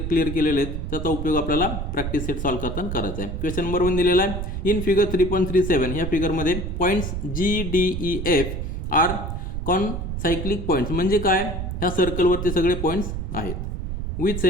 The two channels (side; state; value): right; noise; rumble, 4 dB below the sound